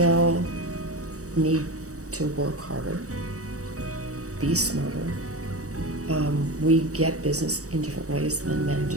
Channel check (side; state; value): left; late; 0.66 ms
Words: need to work harder, be smarter. We get business in different ways than men